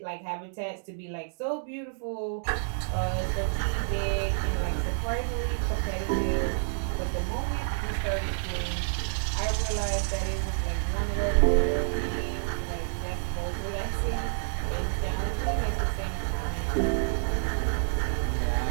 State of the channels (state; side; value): silent; left; digital silence